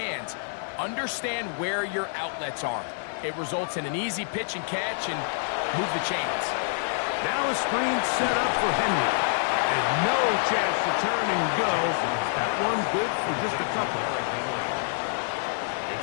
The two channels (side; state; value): right; silent; digital silence